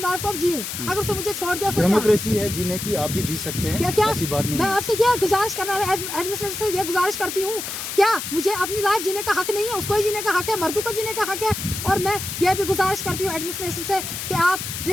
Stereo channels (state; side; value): noise; left; hiss, 6 dB below the sound